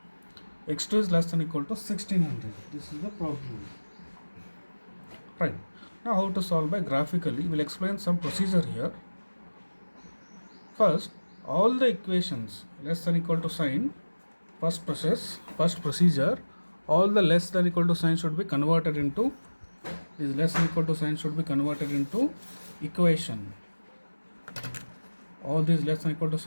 x2 is less than equal to 1600. This is the problem. Right. Now how to solve by graphically? We'll explain some procedure here. First, all the equations less than equal to sign, first procedure, all the less than equal to sign should be converted into, this less than equal to sign should be converted into equation. All these less than equal to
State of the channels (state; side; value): inverted; both; correlation -1.00